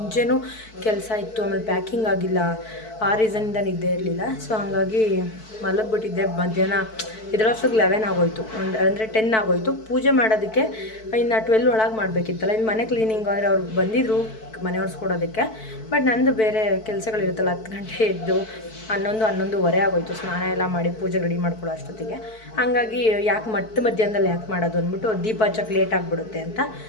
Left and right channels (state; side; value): late; right; 4.6 ms